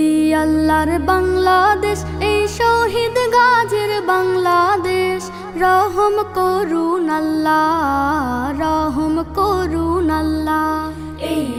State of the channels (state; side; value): identical; both; correlation 1.00